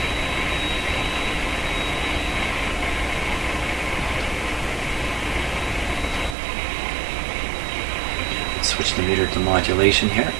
Switch the meter to modulation here.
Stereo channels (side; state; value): left; drops out; at 6.4 s